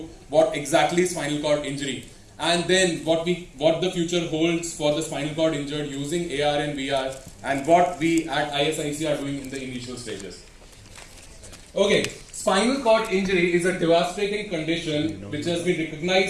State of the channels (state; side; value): identical; both; correlation 1.00